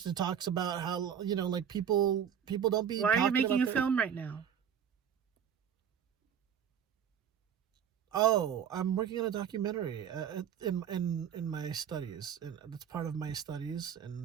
it talks about how like people don't be. Why are you making a film? film right now? Oh, I'm working on a documentary in my studies, and it's part of my studies,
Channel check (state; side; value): quieter; left; 8.5 dB